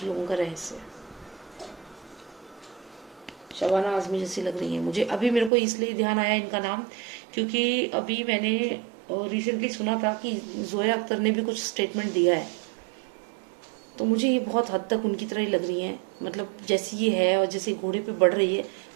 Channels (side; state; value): left; drops out; at 5.5 s